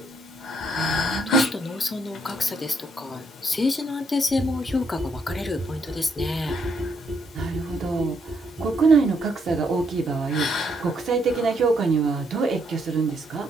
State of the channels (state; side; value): normal; both; correlation 0.74